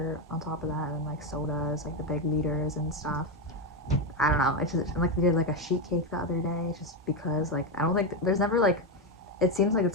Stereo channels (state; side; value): normal; both; correlation 0.09